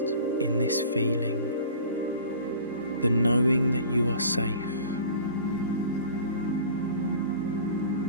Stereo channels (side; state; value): both; inverted; correlation -0.44